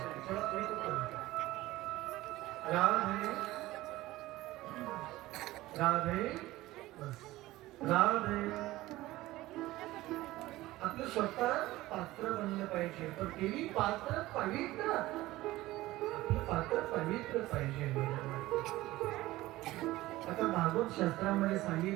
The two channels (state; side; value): quieter; left; 17.5 dB